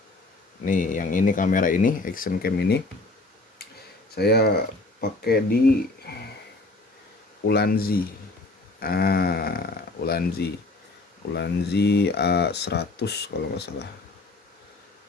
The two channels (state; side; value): quieter; right; 3.1 dB